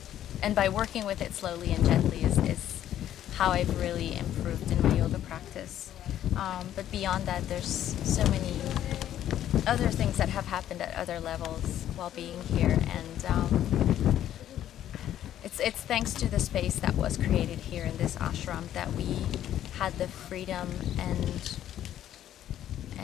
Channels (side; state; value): right; quieter; 11.5 dB